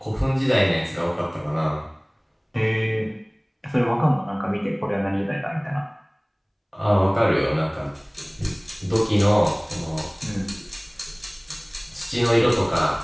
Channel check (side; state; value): both; identical; correlation 1.00